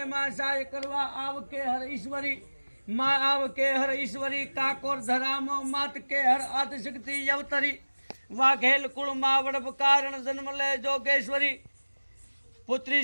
माँ सहाय करवा आव के हर ईश्वरी माँ आव के हर ईश्वरी काकोर धरामो मात के हर आद शक्ति यवतरी वाघेल कुल माँ वड़प कारण जन्म ले जोगेश्वरी पुत्री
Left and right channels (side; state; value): both; inverted; correlation -1.00